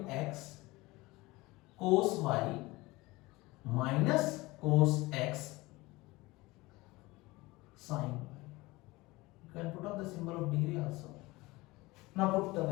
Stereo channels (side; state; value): right; quieter; 21.4 dB